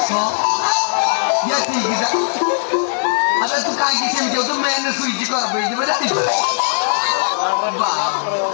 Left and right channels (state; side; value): silent; right; 56 dB below the other